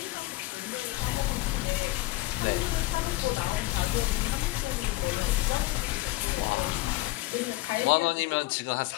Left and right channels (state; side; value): quieter; right; 19.5 dB